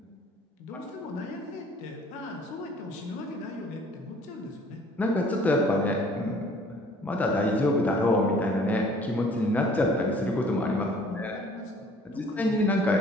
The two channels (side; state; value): both; normal; correlation 0.54